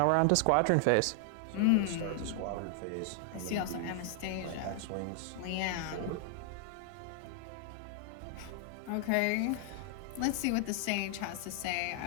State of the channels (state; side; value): different; both; correlation 0.00